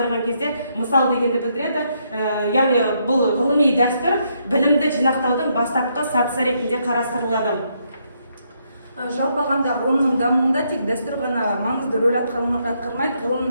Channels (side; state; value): both; inverted; correlation -0.75